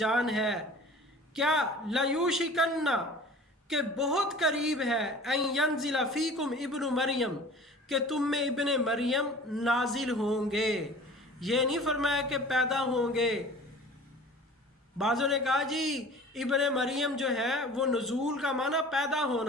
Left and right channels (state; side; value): normal; both; correlation 0.43